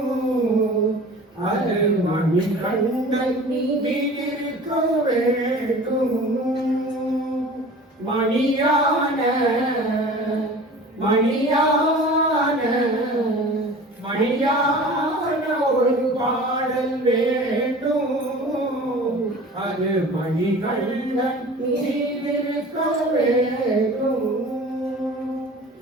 அது மணிகண்டன் மீதிருக்க வேண்டும். மணியான மணியான மணியான ஒரு பாடல் வேண்டும், அது மணிகண்டன் மீதிருக்க வேண்டும்.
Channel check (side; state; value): both; normal; correlation 0.41